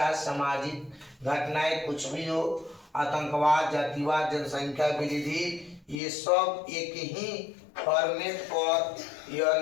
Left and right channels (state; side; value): drops out; right; at 6.0 s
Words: सामाजिक घटनाएं कुछ भी हो, आतंकवाद, जातिवाद, जनसंख्या वृद्धि, ये सब एक ही फॉर्मेट पर यह